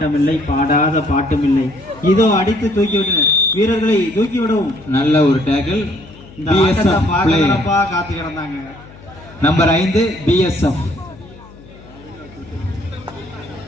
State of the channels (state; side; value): noise; left; hum, 21 dB below the sound